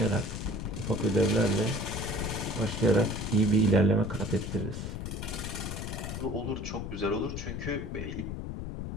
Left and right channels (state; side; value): noise; left; rumble, 5 dB below the sound